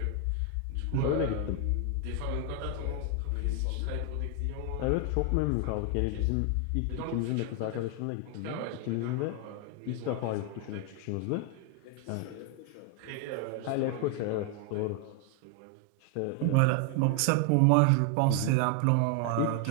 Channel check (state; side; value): different; both; correlation 0.01